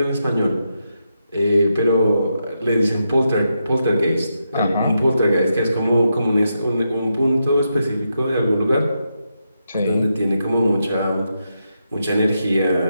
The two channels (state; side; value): inverted; both; correlation -0.84